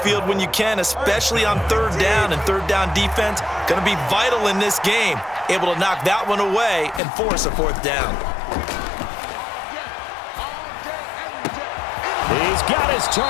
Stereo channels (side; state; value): right; drops out; at 7.0 s